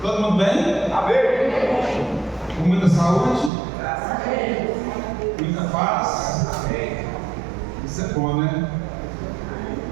Todo mundo bem? Amém. Com muita saúde? Graças a Deus. Muita paz? Amém. Isso é bom, né?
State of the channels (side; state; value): left; drops out; at 3.5 s